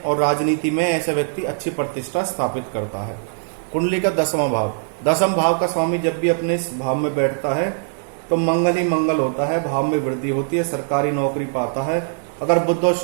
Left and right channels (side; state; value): left; silent; digital silence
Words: और राजनीति में ऐसे व्यक्ति अच्छी प्रतिष्ठा स्थापित करता है। कुंडली का 10वां भाव, 10वें भाव का स्वामी जब भी अपने इस भाव में बैठता है तो मंगल ही मंगल होता है, भाव में वृद्धि होती है, सरकारी नौकरी पाता है। अगर बुध और